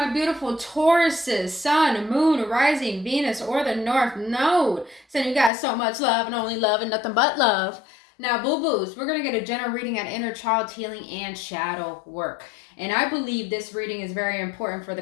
beautiful Tauruses, Sun, Moon, Rising, Venus, or the North Node? Sending you guys so much love and only love and nothing but love. Now, boo boos, we're going to get a general reading on inner child healing and shadow work. And I believe this reading is very important for the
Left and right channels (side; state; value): right; drops out; at 5.5 s